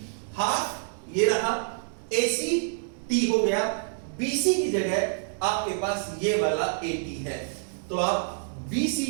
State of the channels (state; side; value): silent; left; 60 dB below the other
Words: हाफ ये रहा, AC T हो गया, BC की जगह आपके पास ये वाला AT है, तो आप BC